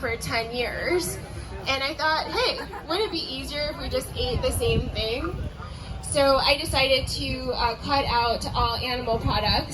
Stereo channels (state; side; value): identical; both; correlation 1.00